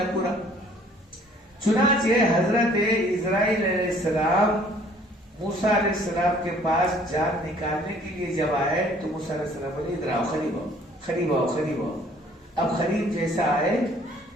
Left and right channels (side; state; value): both; normal; correlation 0.57